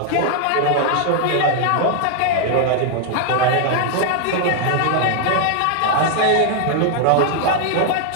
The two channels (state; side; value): different; both; correlation 0.00